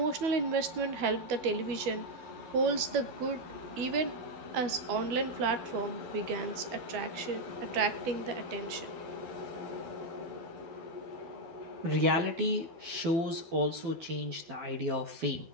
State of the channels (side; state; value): left; late; 12 ms